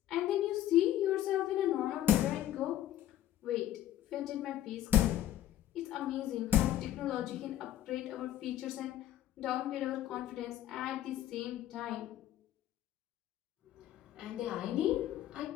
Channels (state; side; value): quieter; right; 12.4 dB